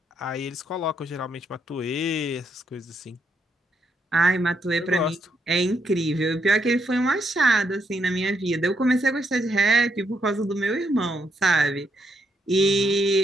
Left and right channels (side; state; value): both; normal; correlation 0.77